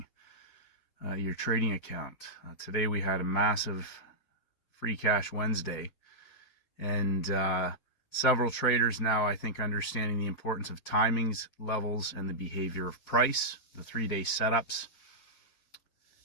your trading account. Today we had a massive free cash Wednesday, and several traders now, I think, understanding the importance of timings, levels, and the behavior of price, the 3-day setups.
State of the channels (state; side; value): late; right; 4.1 ms